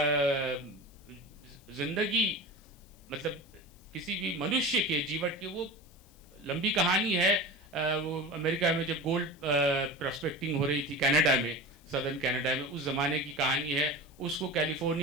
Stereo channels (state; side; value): noise; left; hiss, 28 dB below the sound